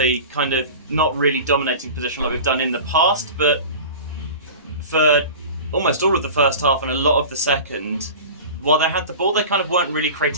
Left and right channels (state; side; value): inverted; both; correlation -0.35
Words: kind of not really dominating position like we've done in the past, but for almost all of the first half and a lot of the second, while they had the ball, they kind of weren't really